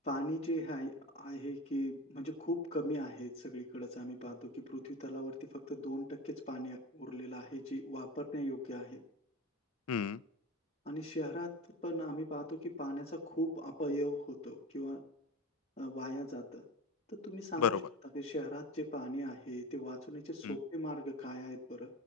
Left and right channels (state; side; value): normal; both; correlation 0.31